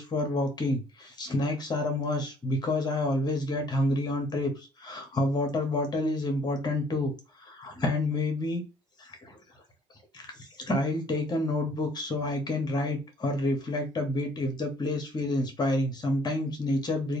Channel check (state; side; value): normal; both; correlation 0.60